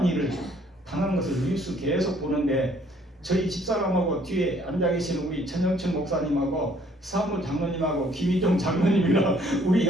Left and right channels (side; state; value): both; normal; correlation 0.62